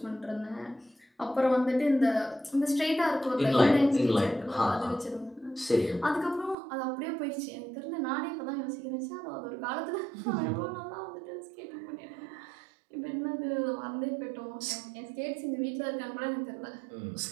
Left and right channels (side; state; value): left; drops out; at 6.6 s